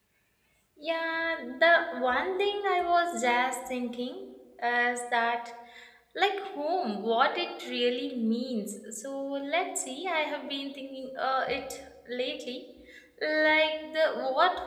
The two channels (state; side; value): identical; both; correlation 1.00